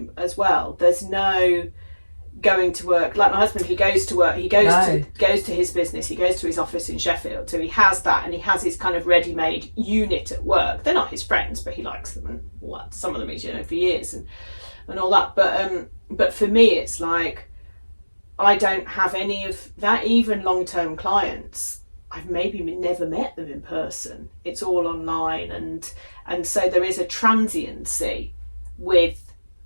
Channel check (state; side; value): inverted; both; correlation -1.00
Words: as well, there's no going to work. Like my husband, he goes to work, he goes to his business, he goes to his office in Sheffield, so he has that, and he has his kind of ready-made unit at work. They're not his friends, but he likes them, and some of them he's for years and all that. But for me, it's like I don't have any of that. Even long-term clients, I've maybe never met them in person. It's all online, and so there is a transiency with